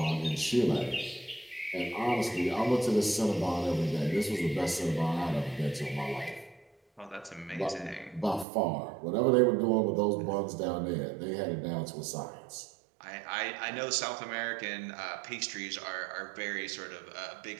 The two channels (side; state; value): left; drops out; at 8.5 s